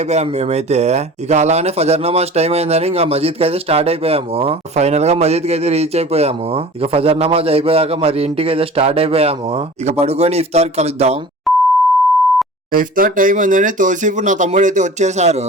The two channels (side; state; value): both; normal; correlation 0.41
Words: మేమైతే. ఇక అలానే ఫజర్ నమాజ్ టైం అయిందని ఇంకా మజీద్ కి అయితే స్టార్ట్ అయిపోయాము. ఫైనల్ గా మజీద్ కి అయితే రీచ్ అయిపోయాము. ఇక ఫజర్ నమాజ్ అయిపోయాక మరి ఇంటికి అయితే స్టార్ట్ అయిపోయాము. ఇక పడుకొని ఇఫ్తార్ కలుద్దాం. ఇఫ్తార్ టైం అందని తోసిఫ్ నా తమ్ముడు అయితే వచ్చేసారు.